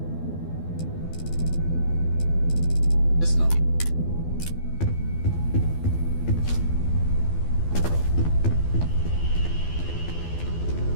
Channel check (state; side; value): late; right; 12 ms